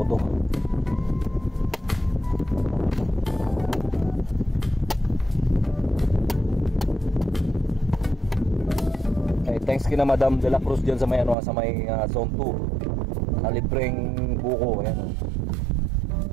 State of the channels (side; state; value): left; drops out; at 11.4 s